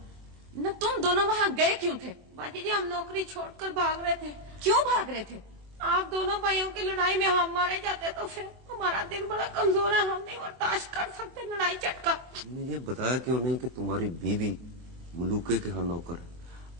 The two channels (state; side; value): late; left; 24 ms